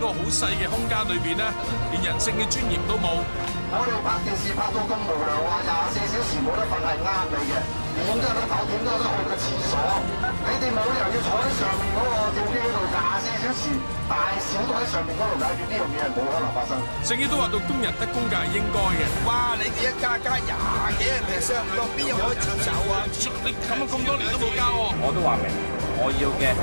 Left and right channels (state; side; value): inverted; both; correlation -1.00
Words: 好細嘅空間裏邊咧，連人性嘅尊嚴都冇。我哋拍電視拍到咁無聊啊，24小時冇得瞓係啱你嘅，點都有得唞，點都有得去個廁所。你哋冇理由要坐喺上面嗰個吊機嗰度24小時，大小都喺上面嗰度解決，呢樣嘢係冇可能發生。聖經都話到工人得工價係應該嘅。哇！你哋一加20幾%咁多，邊有可以接受啊？你咁多年都冇交喎。我都話明，我要嘅